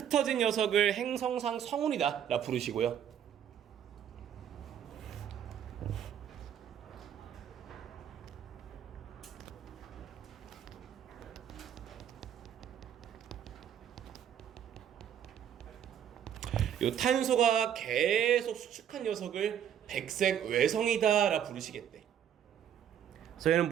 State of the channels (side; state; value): left; quieter; 9.4 dB